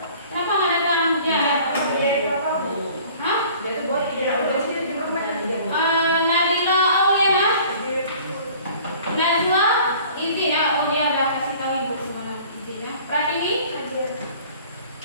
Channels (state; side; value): inverted; both; correlation -0.50